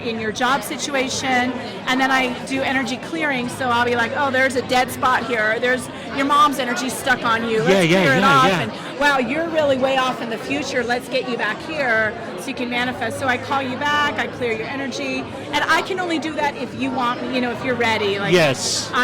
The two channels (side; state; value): both; identical; correlation 1.00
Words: your job situation. And then I do energy clearing, so I'll be like, oh, there's a dead spot here, there's your mom's energy stuck on you, let's clear it off. And wow, you're really way off in the future, let's get you back here so you can manifest. So I call you back, I clear your energy, and I can only do that if you want me, if you're ready. Yes.